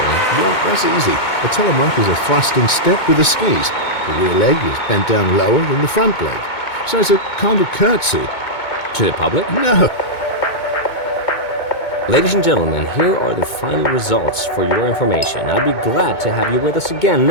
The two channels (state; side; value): late; right; 2.2 ms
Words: Well, that's easy. A telemark is a thrusting step with the skis. The rear leg is bent down lower than the front leg. So it's a kind of curtsy. To the public? No. Ladies and gentlemen, here are the final results for your information. I'd be glad to have you with us again